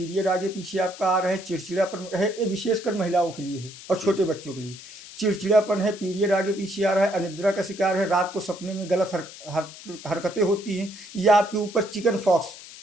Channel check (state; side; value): noise; left; hiss, 16 dB below the sound